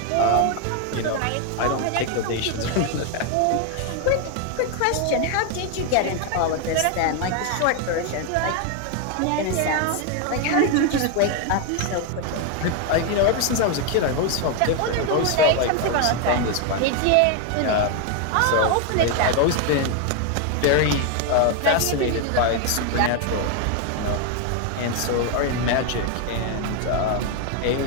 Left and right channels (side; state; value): both; different; correlation 0.01